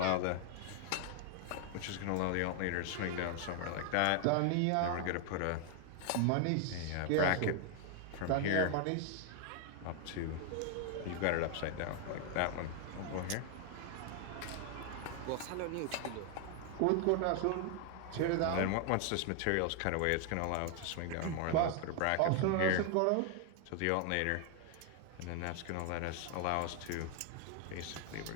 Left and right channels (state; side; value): different; both; correlation 0.00